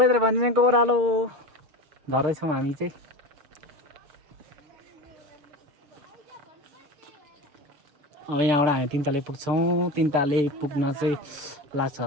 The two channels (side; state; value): left; late; 6.9 ms